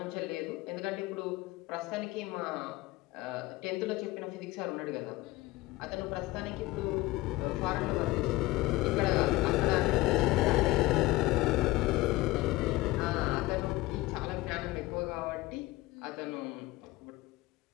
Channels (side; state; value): right; quieter; 19.4 dB